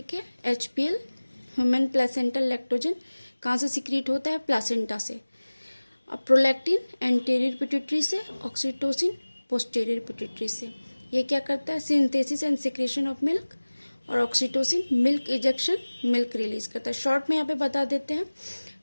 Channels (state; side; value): inverted; both; correlation -1.00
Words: है, HPL ह्यूमन प्लेसेंटल लैक्टोजन कहाँ से सिक्रीट होता है, प्लासेंटा से। अब प्रोलैक्टिन एंटीरियर पिट्यूटरी से, ऑक्सीटोसिन पोस्टीरियर पिट्यूटरी से। ये क्या करता है, synthesis and secretion of milk, और oxytocin milk ejection, milk release करता है। शॉर्ट में यहाँ पे बता देते हैं